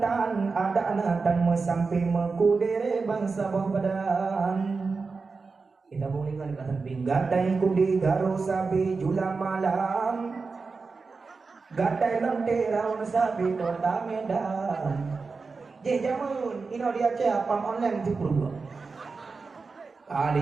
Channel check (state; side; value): quieter; left; 4.4 dB